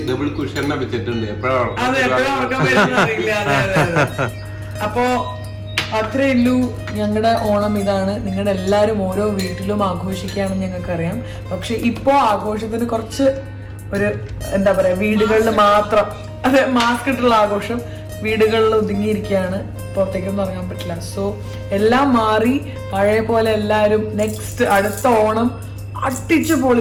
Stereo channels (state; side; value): identical; both; correlation 1.00